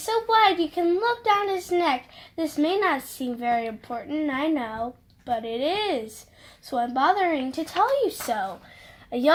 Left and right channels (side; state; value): both; identical; correlation 1.00